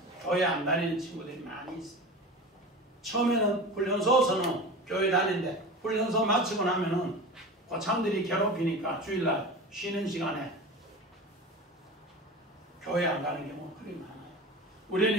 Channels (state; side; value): normal; both; correlation 0.32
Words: 교회 안 다니는 친구들이 많이 있어요. 처음에는 훈련소에서는 교회 다니는데 훈련소 마치고 나면은 고참들이 괴롭히니까 주일날 쉬는 시간에 교회 안 가는 경우가 그리 많아요. 우리는